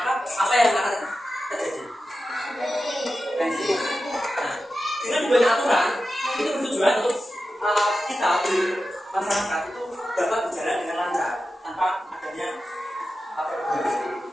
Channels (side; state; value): both; normal; correlation 0.92